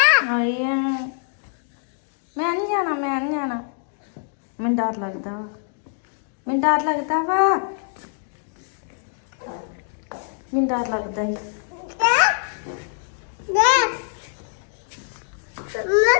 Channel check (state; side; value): silent; right; 63 dB below the other